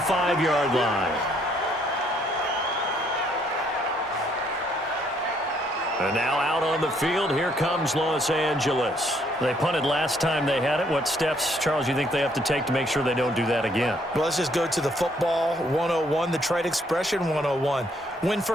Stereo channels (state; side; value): normal; both; correlation 0.68